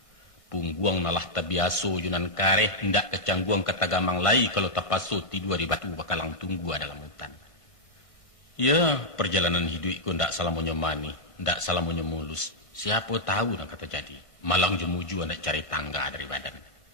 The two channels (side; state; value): right; late; 1.6 ms